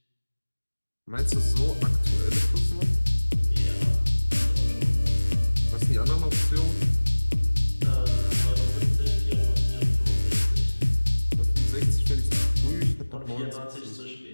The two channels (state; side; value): inverted; both; correlation -1.00